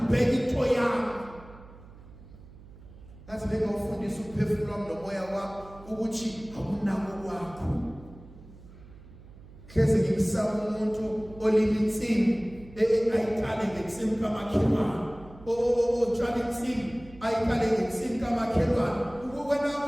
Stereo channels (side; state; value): right; noise; hum, 20 dB below the sound